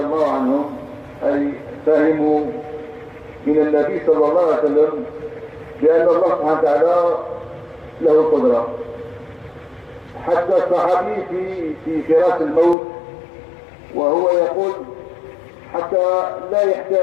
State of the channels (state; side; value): drops out; right; at 12.8 s